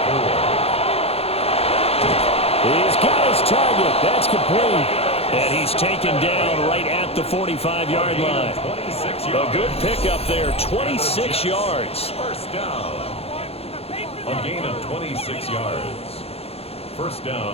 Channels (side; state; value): right; late; 0.29 ms